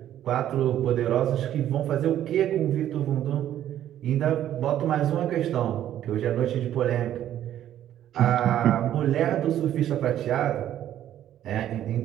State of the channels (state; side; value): quieter; left; 11.6 dB